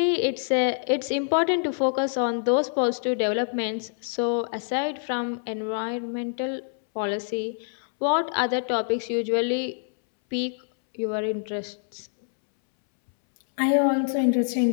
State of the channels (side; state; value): right; silent; 61 dB below the other